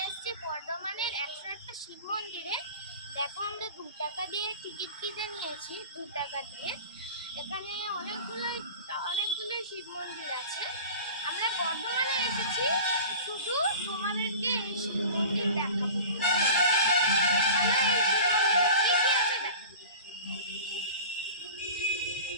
এসেছি বর্ধমানের 101টা শিব মন্দিরে। দেখো, আমরা 2 টাকা দিয়ে টিকিট কিনে নিয়েছি। 2 টাকা দিয়ে এখানে অনেকগুলো শিব মন্দির আছে। আমরা বর্ধমানে এসেছি শুধু তোমাদেরকে এই শিব মন্দির দেখাবো। এখানে এই শিব মন্দিরে কি কি আছে দেখাবো।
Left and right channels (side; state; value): both; inverted; correlation -0.38